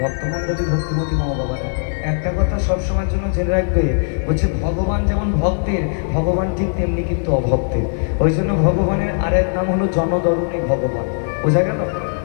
ভক্তমণ্ডলী ভক্তিমতী মা বাবারা একটা কথা সবসময়ের জন্য জেনে রাখবে, বলছে ভগবান যেমন ভক্তের, ভগবান ঠিক তেমনি কিন্তু অভক্তের। ওই জন্য ভগবানের আরেক নাম হলো জনদরণী ভগবান। বোঝা গেল?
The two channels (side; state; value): right; silent; digital silence